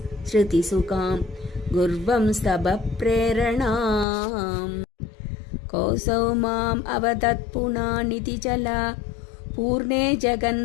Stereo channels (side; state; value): right; drops out; at 4.0 s